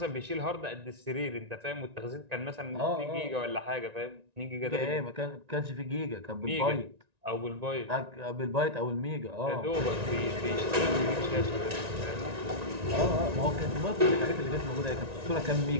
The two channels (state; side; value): late; left; 1.9 ms